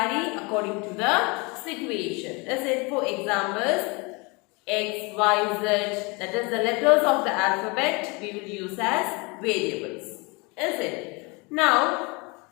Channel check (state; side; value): quieter; right; 28.4 dB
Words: according to the situation. Is it? For examples, X, Y, Z, that is the letters of the alphabet we will use as variables. Is it? Now,